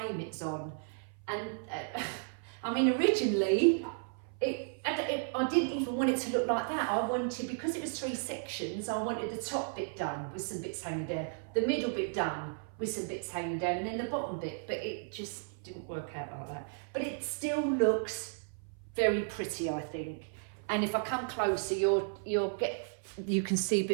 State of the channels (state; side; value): silent; left; 55 dB below the other